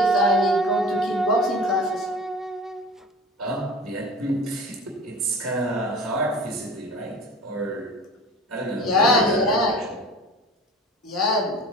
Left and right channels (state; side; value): normal; both; correlation 0.39